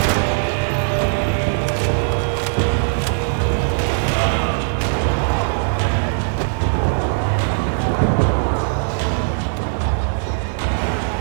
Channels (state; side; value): silent; left; digital silence